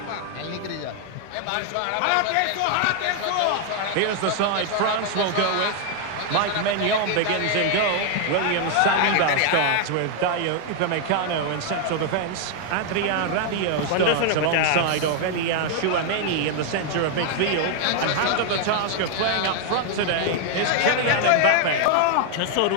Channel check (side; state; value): both; different; correlation 0.00